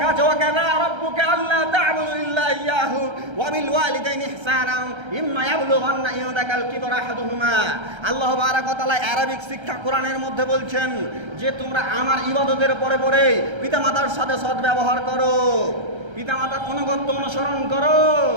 আছে ওয়াকাযা রাব্বুকা আল্লা তা'বুদু ইল্লা ইয়াহু ওয়া বিল ওয়ালিদাইনি ইহসানা ইম্মা ইয়াবলুগান্না ইনদাকাল কিবরা আহাদুহুমা। আল্লাহ বারাক ওয়া তাআলা আরবিক শিক্ষা কোরআনের মধ্যে বলছেন যে তোমরা আমার ইবাদতের পরে পরে পিতামাতার সাথে সদ্ব্যবহার করো, পিতামাতার অনুগত্য অনুসরণ করো।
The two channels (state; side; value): late; left; 1.3 ms